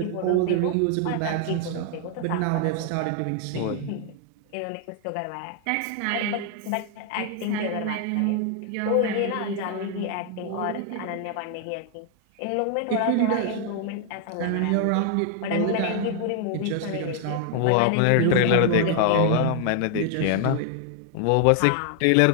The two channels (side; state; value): both; different; correlation 0.00